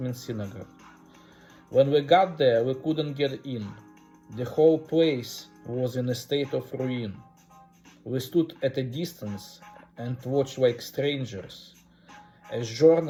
means synagogue. When we got there, we couldn't get in. The whole place was in a state of ruin. We stood at a distance and watched like strangers, as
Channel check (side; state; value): both; identical; correlation 1.00